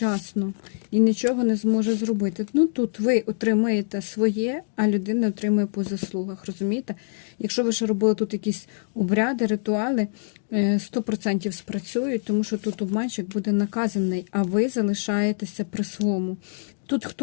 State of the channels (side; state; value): right; silent; digital silence